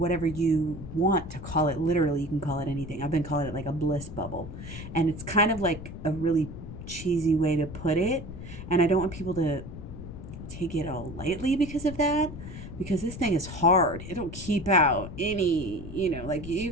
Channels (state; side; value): noise; left; rumble, 11 dB below the sound